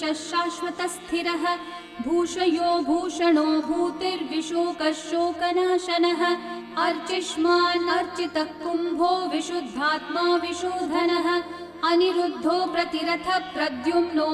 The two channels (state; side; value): identical; both; correlation 1.00